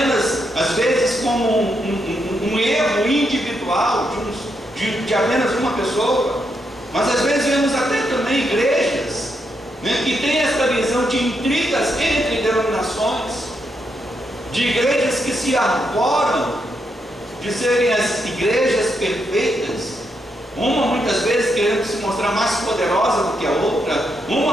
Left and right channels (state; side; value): normal; both; correlation 0.81